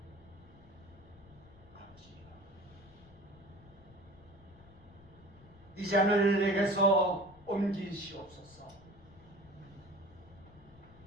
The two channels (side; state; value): left; noise; rumble, 23 dB below the sound